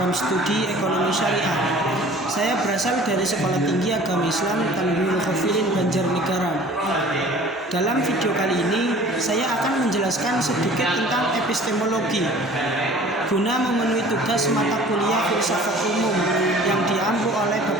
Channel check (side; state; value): both; normal; correlation 0.47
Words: studi ekonomi syariah. Saya berasal dari Sekolah Tinggi Agama Islam Tanwirul Khafilin Banjarnegara. Dalam video kali ini, saya akan menjelaskan sedikit tentang epistemologi guna memenuhi tugas mata kuliah filsafat umum yang diampu oleh